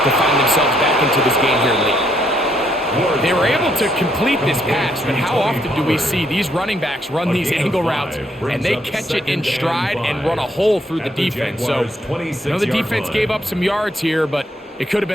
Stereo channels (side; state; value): both; normal; correlation 0.72